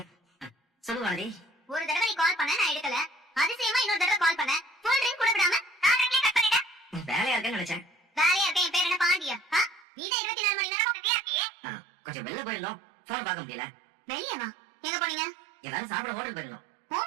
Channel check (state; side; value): drops out; left; at 9.9 s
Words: சொல்லுவாடி. ஒரு தடவை நீ கால் பண்ண, நான் எடுக்கல. அதிசயமா இன்னொரு தடவை கால் பண்ண, ஃபுல் ரிங் கூட விடாம நான் ரிங்லயே கட் பண்ணிட்டேன். வேலையா இருக்கேன்னு நினைச்சேன். வேலையா இருக்கேன். என் பேர் என்ன பாண்டியா? நீதான் 24 மணி நேரம் பிஸியா இருக்கியே. கொஞ்சம் வெளில போயிருந்தோம், போன் பார்க்க முடியல. வெளியவா? எங்க போனீங்க? எல்லாரும் சாப்பிட ஹோட்டல் போயிருந்தோம்.